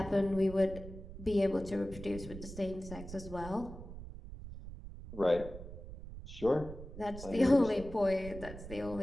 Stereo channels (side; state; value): right; noise; rumble, 12 dB below the sound